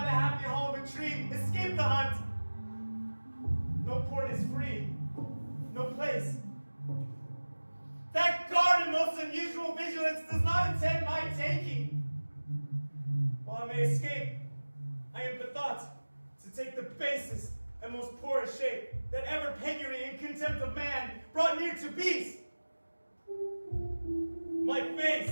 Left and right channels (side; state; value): both; inverted; correlation -1.00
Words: the happy hall of a tree escaped the hunt. No port is free, no place. That guard in most unusual vigilance does not intend my taking. While I may escape, I am bethought to take the basest and most poorest shape that ever penury and contempt of man brought near to beast. My